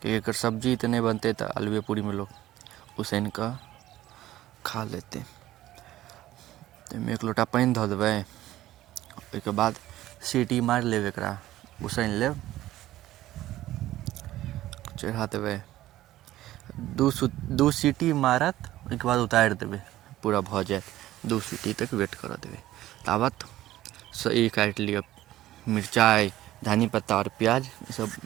कि एकर सब्जी तऽ नहीं बनतै, तऽ आलूए पूरी में लोग उसैन कऽ खा लेतै। ताहिमे एक लोटा पानि धऽ देबै, ओहिके बाद सीटी मारि लेब, एकरा उसैन लेब, चढ़ा देबै। दू सीटी मारत, ओहिके बाद उतारि देबै, पूरा भऽ जायत। 2 सीटी तक वेट करऽ देबै। ताबत ई काटि लिअ मिरचाइ, धनी पत्ता और प्याज, ई सब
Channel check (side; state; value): left; quieter; 14.8 dB